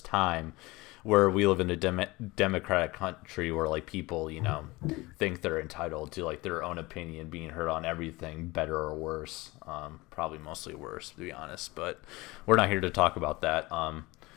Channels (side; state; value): right; quieter; 21.9 dB